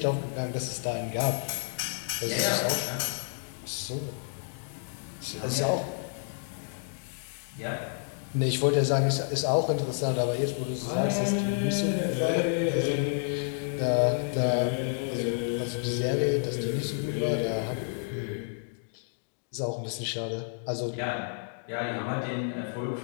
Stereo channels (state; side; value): silent; right; digital silence